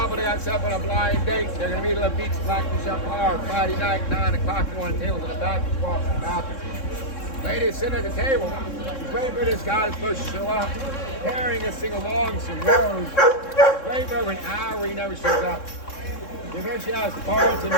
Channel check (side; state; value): right; late; 3.6 ms